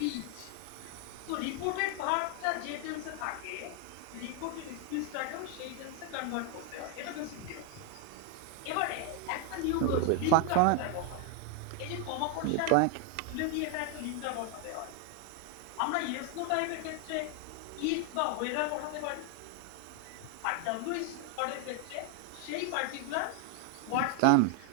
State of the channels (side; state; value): both; different; correlation 0.01